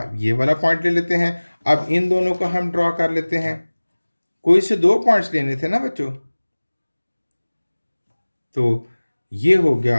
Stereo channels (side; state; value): both; inverted; correlation -1.00